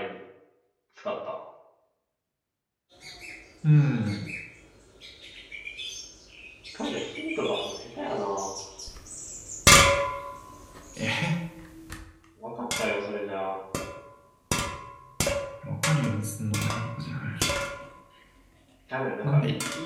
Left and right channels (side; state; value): both; identical; correlation 1.00